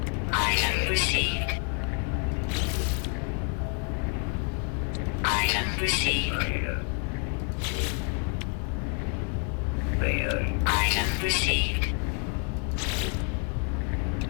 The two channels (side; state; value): right; quieter; 36.6 dB